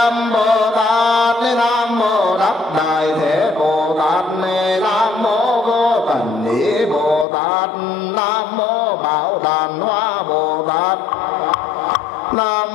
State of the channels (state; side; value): drops out; right; at 7.2 s